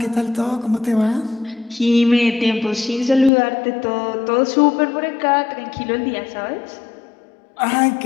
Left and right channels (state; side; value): drops out; right; at 3.3 s